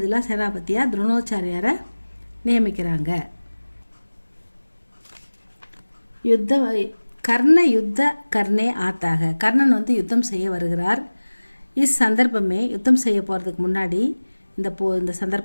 சேனாபதியாக துரோணாச்சாரியாரை நியமிக்கிறாங்க. கர்ண யுத்த கர்ணே ஆத்தாக. கர்ணன் யுத்தம் செய்ய வருகிறார். சந்தர்ப்பமே யுத்தம் செய்ய போகிறதுக்கு முன்னாடி இந்த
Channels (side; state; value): both; inverted; correlation -1.00